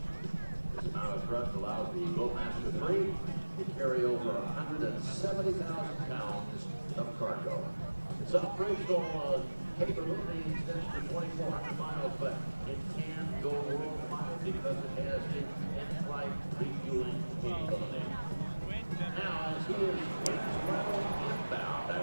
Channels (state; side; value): inverted; both; correlation -1.00